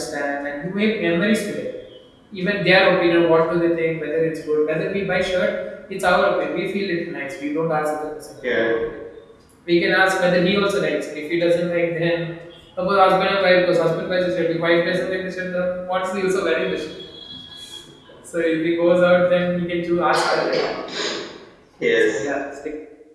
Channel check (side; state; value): both; identical; correlation 1.00